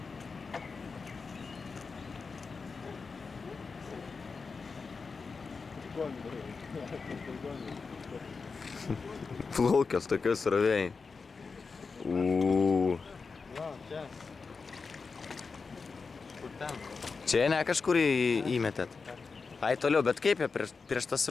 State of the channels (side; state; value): right; quieter; 4.7 dB